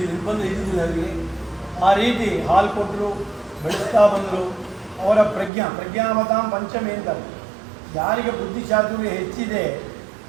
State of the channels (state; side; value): drops out; left; at 5.5 s